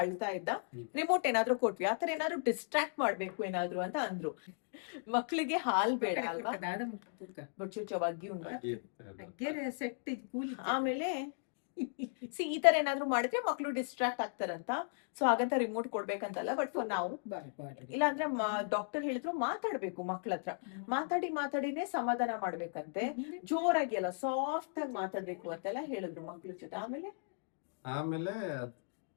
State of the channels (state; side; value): silent; right; digital silence